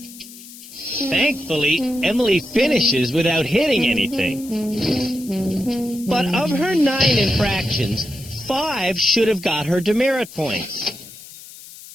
Thankfully, Emily finishes without hitting anything. But of her 9 infractions, 5 should have got her demerit points.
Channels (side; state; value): left; noise; hiss, 17 dB below the sound